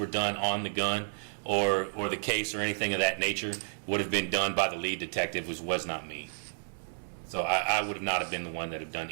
done on the gun or the case or anything of that nature would have been done by the lead detective, which was not me. So I would have not have been the one that have done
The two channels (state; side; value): silent; left; digital silence